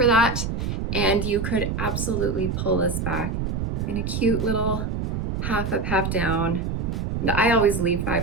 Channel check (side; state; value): right; noise; rumble, 2 dB below the sound